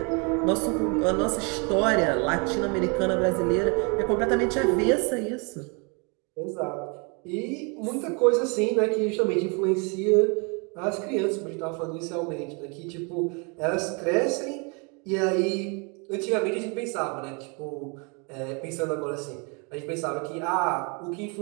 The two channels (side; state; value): left; quieter; 33.2 dB